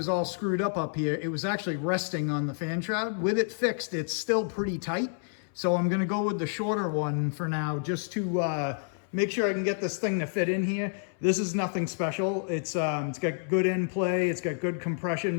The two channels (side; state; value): right; silent; 59 dB below the other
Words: all screwed up here, it was actually resting on the fan shroud. With it fixed, it's still pretty tight. So I'm gonna go with the shorter one for now, just to make sure I can get this thing to fit in here. This is nothing special. It's got good end play, it's got good